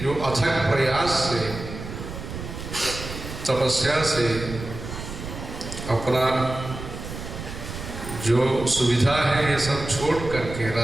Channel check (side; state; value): right; noise; rumble, 9 dB below the sound